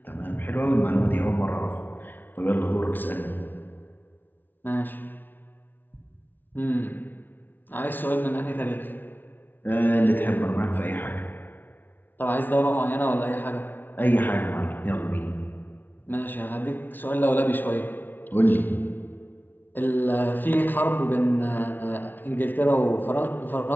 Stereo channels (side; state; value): right; late; 0.089 ms